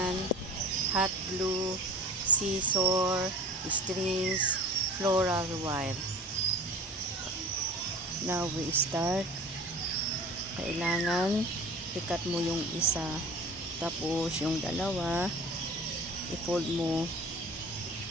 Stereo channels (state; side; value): normal; both; correlation 0.39